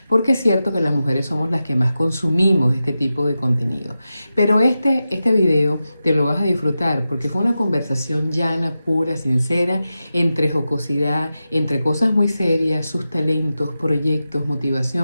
porque es cierto que las mujeres somos las que más consumimos este tipo de contenido. Pero este video te lo vas a disfrutar porque fue una conversación llana, pura, sincera, entre jocosidad, entre cosas muy serias, sus talentos, proyectos,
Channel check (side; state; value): both; inverted; correlation -0.92